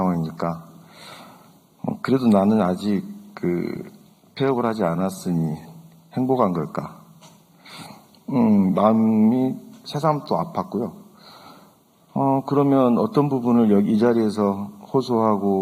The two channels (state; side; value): identical; both; correlation 1.00